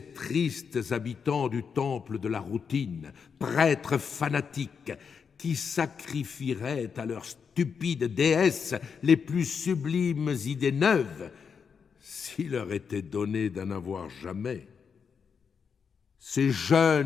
tristes habitants du temple de la routine, prêtres fanatiques, qui sacrifieraient à leurs stupides déesses les plus sublimes idées neuves, s'il leur était donné d'en avoir jamais. Ces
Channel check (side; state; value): right; quieter; 6.3 dB